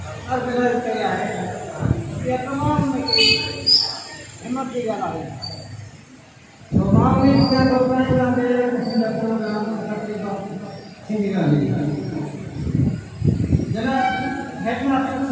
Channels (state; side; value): identical; both; correlation 1.00